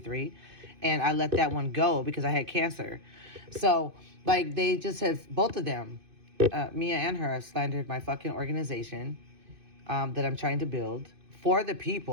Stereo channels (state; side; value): late; left; 2.5 ms